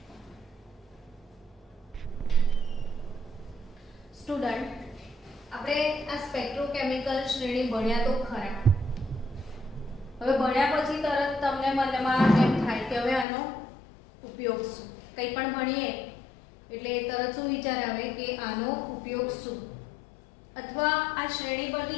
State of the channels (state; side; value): drops out; right; at 13.2 s